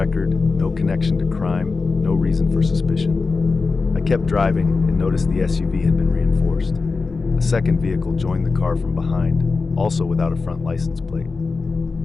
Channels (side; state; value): right; quieter; 4.2 dB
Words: no connection to crime, no reason for suspicion. I kept driving and noticed the SUV had been reinforced. A second vehicle joined the car from behind, also without a front license plate.